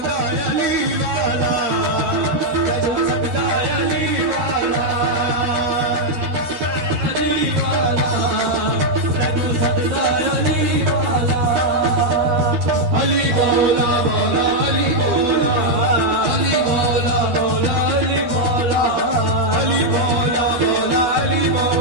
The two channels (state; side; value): late; left; 12 ms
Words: अली वाला, तेनू सजदा अली वाला, अली वाला, तेनू सजदा अली वाला, अली मौला मौला अली मौला, अली मौला मौला अली मौला, अली मौला मौला अली